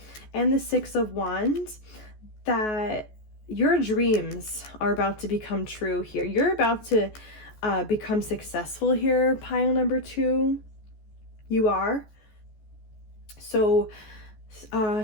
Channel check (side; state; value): right; late; 14 ms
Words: and the 6 of Wands that your dreams are about to become true here. You're about to become successful here, pile number 2. You are. So